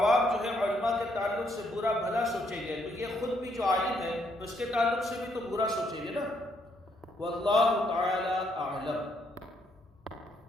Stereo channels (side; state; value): both; normal; correlation 0.73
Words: جو ہے علماء کے تعلق سے برا بھلا سوچیں گے تو یہ خود بھی جو عالم ہے تو اس کے تعلق سے بھی تو برا سوچیں گے نا۔ واللہ تعالی اعلم۔